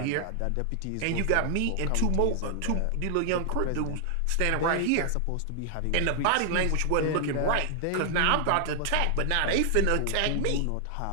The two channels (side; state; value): both; different; correlation 0.00